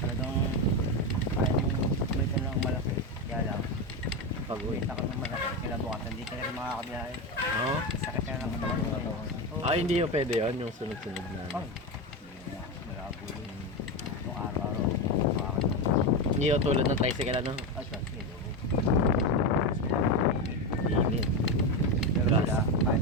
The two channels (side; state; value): both; normal; correlation 0.14